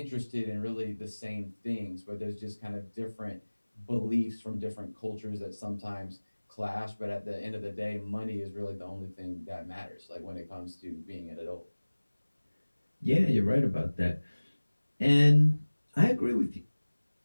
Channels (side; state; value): both; inverted; correlation -1.00